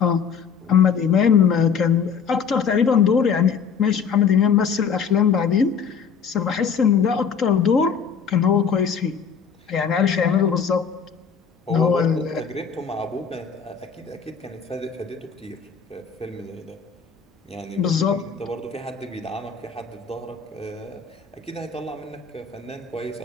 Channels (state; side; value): quieter; right; 6.5 dB